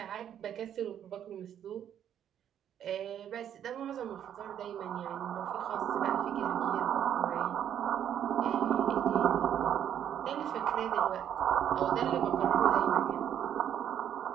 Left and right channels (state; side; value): quieter; left; 9.8 dB